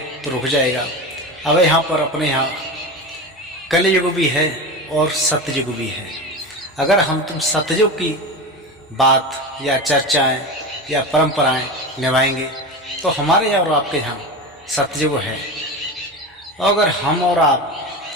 रुक जाएगा। अब यहाँ पर अपने यहाँ कलयुग भी है और सत्ययुग भी है। अगर हम तुम सत्ययुग की बात या चर्चाएं या परंपराएं निभाएंगे तो हमारे यहाँ और आपके यहाँ सत्ययुग है। और अगर हम और आप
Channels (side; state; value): both; normal; correlation 0.25